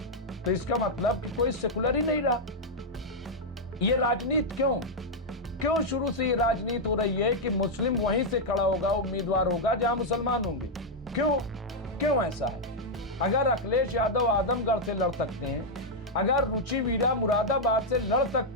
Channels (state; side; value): normal; both; correlation -0.02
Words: तो इसका मतलब कि कोई सेकुलर ही नहीं रहा। ये राजनीति क्यों शुरू से ये राजनीति हो रही है कि मुस्लिम वहीं से खड़ा होगा, उम्मीदवार होगा जहां मुसलमान होंगे? क्यों ऐसा है? अगर अखिलेश यादव आजमगढ़ से लड़ सकते हैं, अगर रुचि वीरा मुरादाबाद से लड़